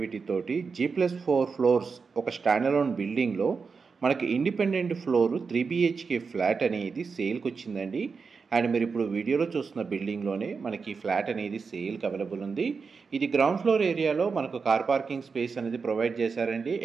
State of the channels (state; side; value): quieter; left; 5.1 dB